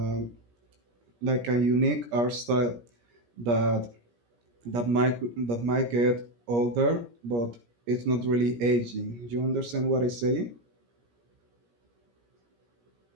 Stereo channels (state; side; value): late; left; 17 ms